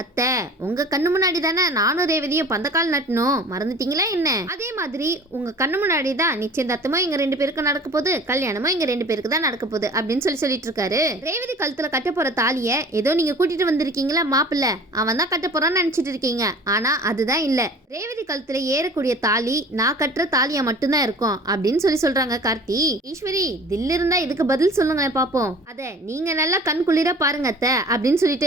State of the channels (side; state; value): both; normal; correlation 0.44